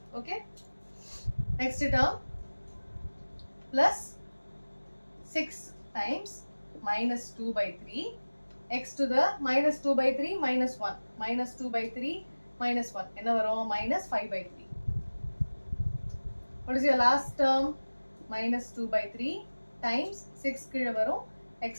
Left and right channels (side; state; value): both; inverted; correlation -1.00